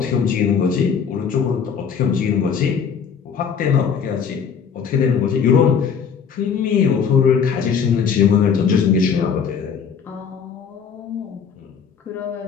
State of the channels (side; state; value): right; quieter; 6.8 dB